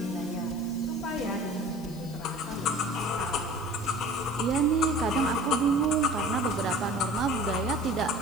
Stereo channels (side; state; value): left; noise; hiss, 20 dB below the sound